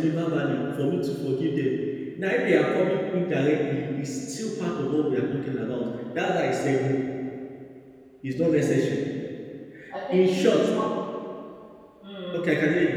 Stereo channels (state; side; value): identical; both; correlation 1.00